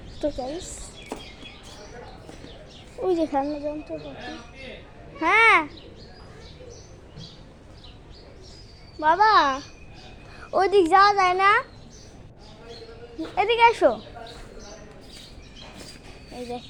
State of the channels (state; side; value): identical; both; correlation 1.00